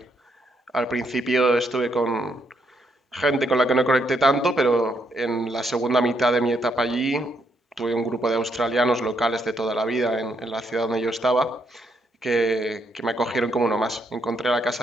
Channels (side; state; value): both; normal; correlation 0.75